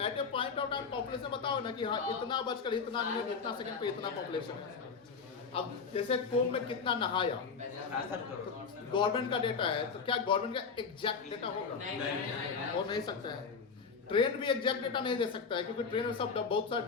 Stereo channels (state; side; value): quieter; right; 5.4 dB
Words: a point of time population बताओ ना कि हाँ इतना बजकर इतना मिनट इतना सेकंड पे इतना पॉपुलेशन है। अब जैसे कुंभ में कितना नहाया, गवर्नमेंट का डेटा है, तो क्या गवर्नमेंट का एग्जैक्ट डेटा होगा? हो नहीं सकता है। ट्रेन भी एग्जैक्ट डेटा नहीं दे सकता है, क्योंकि ट्रेन में सब बहुत सारे